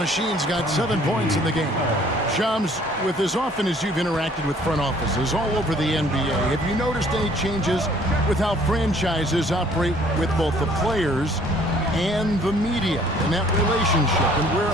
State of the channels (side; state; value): both; normal; correlation 0.58